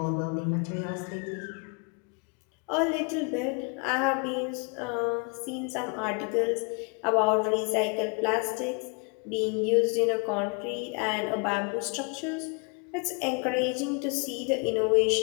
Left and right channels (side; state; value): right; quieter; 35.0 dB